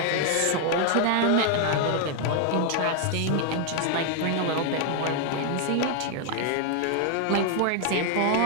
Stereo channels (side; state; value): both; different; correlation 0.00